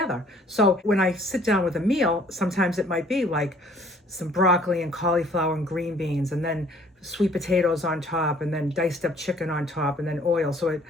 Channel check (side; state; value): both; normal; correlation 0.57